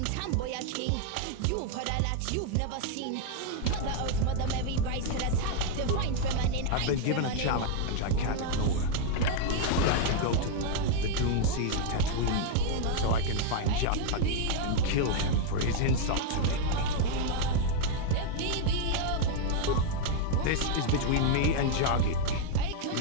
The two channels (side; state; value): both; different; correlation 0.00